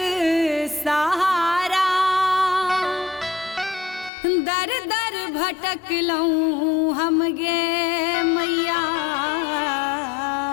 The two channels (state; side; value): drops out; right; at 4.1 s